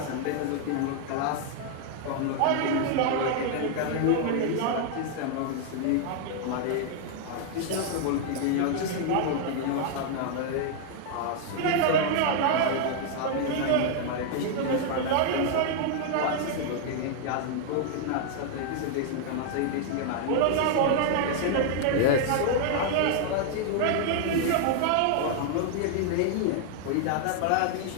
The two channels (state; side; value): different; both; correlation 0.00